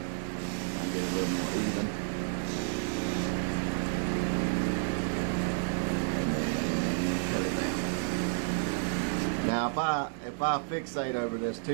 Kind of get it a little more even. And then cut it down. Now if I fixate over this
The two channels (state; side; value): silent; left; digital silence